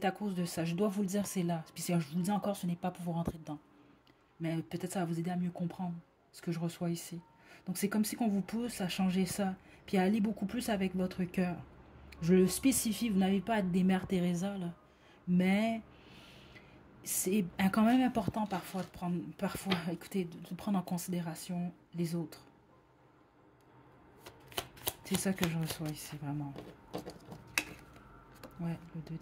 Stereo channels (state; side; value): identical; both; correlation 1.00